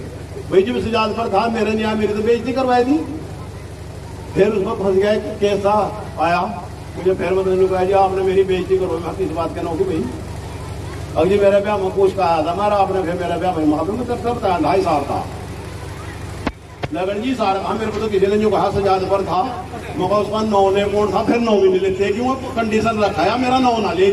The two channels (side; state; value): both; identical; correlation 1.00